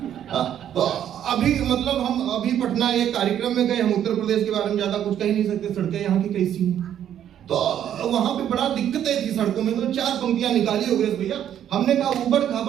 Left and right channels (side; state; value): left; quieter; 10.2 dB